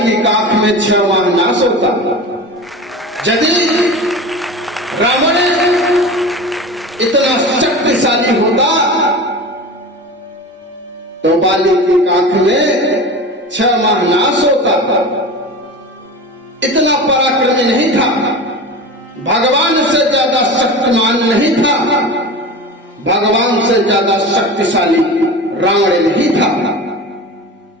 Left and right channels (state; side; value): normal; both; correlation 0.31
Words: की काख में 6 माह नाश होता। यदि रावण इतना शक्तिशाली होता तो बाली की काख में 6 माह नाश होता। इतना पराक्रमी नहीं था, भगवान से ज्यादा शक्तिमान नहीं था, भगवान से ज्यादा शक्तिशाली रावण नहीं था।